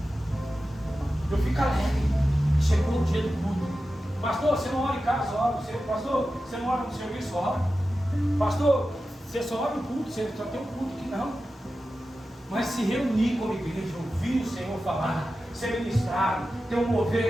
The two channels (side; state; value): both; normal; correlation 0.93